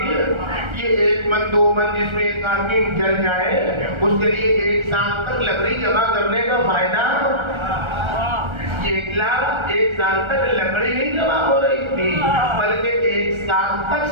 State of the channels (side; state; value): left; late; 1.3 ms